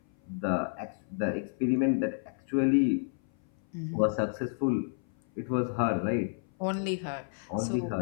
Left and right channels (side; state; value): right; silent; 56 dB below the other